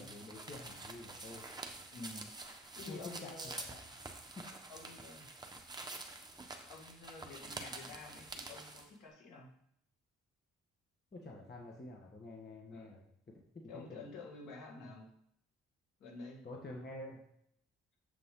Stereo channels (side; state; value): both; normal; correlation 0.42